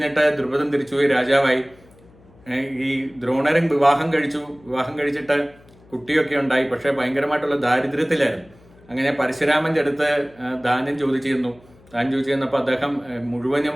ദ്രുപദൻ തിരിച്ചുപോയി രാജാവായി. ഈ ദ്രോണരും വിവാഹം കഴിച്ചിട്ട് കുട്ടിയൊക്കെ ഉണ്ടായി. പക്ഷേ ഭയങ്കരമായിട്ടുള്ള ദാരിദ്ര്യത്തിലായിരുന്നു. അങ്ങനെ പരശുരാമൻ്റെ അടുത്ത് ദാനം ചോദിച്ചിരുന്നു. ദാനം ചോദിച്ചിരുന്നപ്പോൾ അദ്ദേഹം മുഴുവനും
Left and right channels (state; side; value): noise; left; hum, 27 dB below the sound